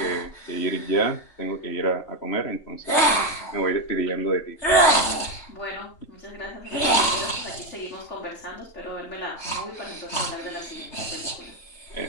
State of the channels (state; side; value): late; right; 3.3 ms